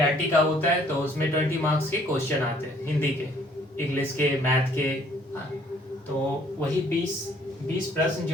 का होता है तो उसमें 20 मार्क्स के क्वेश्चन आते हैं हिंदी के, इंग्लिश के, मैथ के। हाँ, तो वही 20 प्रश्न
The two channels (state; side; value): normal; both; correlation 0.60